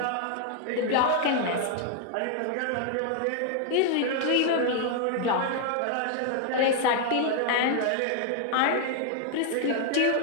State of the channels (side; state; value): both; different; correlation 0.00